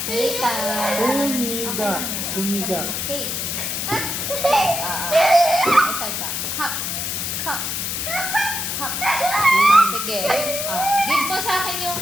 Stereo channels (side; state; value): left; noise; hiss, 2 dB below the sound